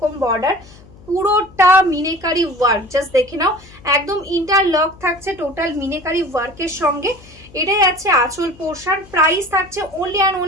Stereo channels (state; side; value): noise; left; hum, 23 dB below the sound